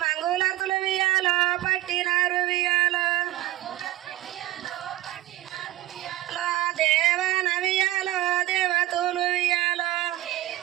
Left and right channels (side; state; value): left; quieter; 16.3 dB